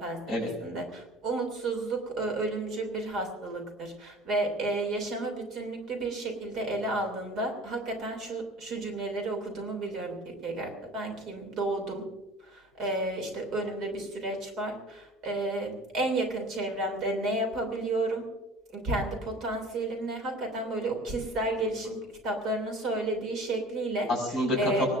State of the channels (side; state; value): both; normal; correlation 0.44